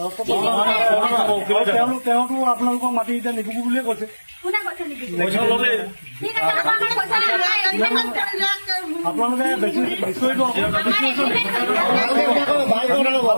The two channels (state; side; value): inverted; both; correlation -1.00